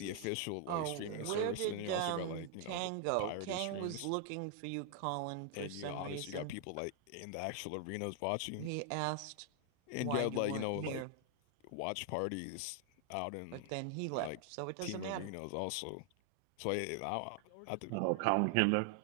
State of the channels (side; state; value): both; different; correlation 0.00